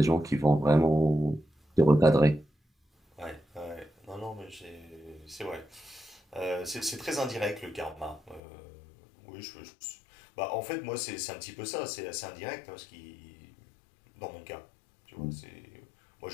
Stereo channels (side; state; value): right; drops out; at 8.4 s